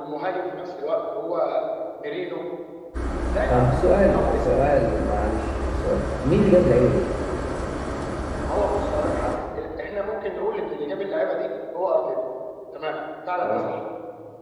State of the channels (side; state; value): both; identical; correlation 1.00